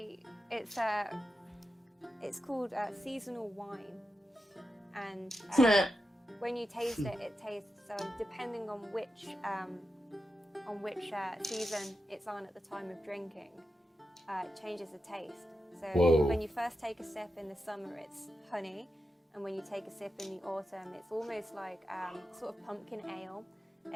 it's called seasonal wine, and when you taste it, it tastes depending on which season it's on at the time of drinking, it changes the taste. So Whoa. When you first take a sip in the summer, it's honey, and when you take a sip in the autumn, it's almost like sort of pumpkin ale,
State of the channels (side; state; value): both; normal; correlation 0.89